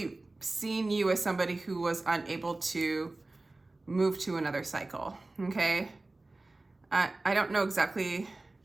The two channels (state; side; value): quieter; left; 3.0 dB